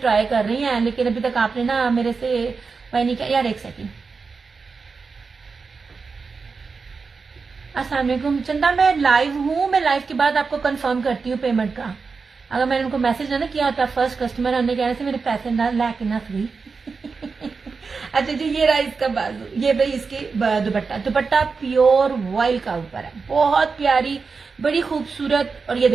कर रही हैं, लेकिन अभी तक आपने ना मेरे से वही नहीं किया। यार एक सेकेंड, अस्सलाम वालेकुम चंदा, मैं लाइव हूँ, मैं लाइव के बाद आपको कंफर्म करती हूँ पेमेंट का। अगर मैंने उनको मैसेज ना किया होता फर्स्ट कस्टमर होने कहने से मेरे पैसे ना लाके ना सही। अच्छा जी, ये रहा इसका बाजू, ये भाई इसकी दुपट्टा, दुपट्टा प्योर वॉयल का ऊपर है, बहुत प्यारी, बड़ी खूबसूरत। और ये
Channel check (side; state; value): left; quieter; 4.8 dB